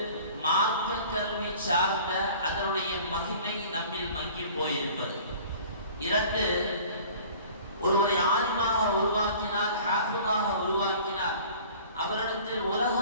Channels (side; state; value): both; inverted; correlation -0.46